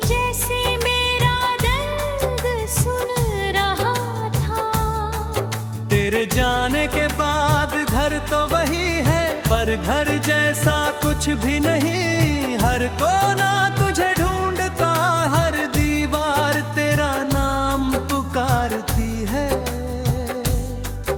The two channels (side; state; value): both; identical; correlation 1.00